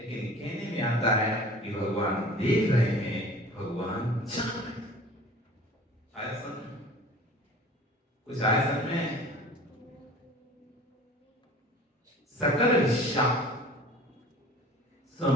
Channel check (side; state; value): both; normal; correlation 0.44